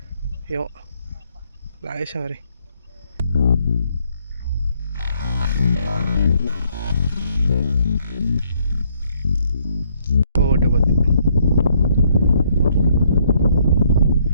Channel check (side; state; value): both; inverted; correlation -0.69